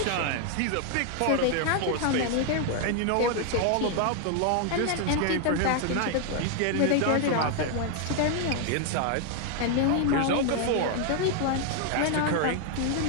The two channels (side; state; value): both; different; correlation 0.00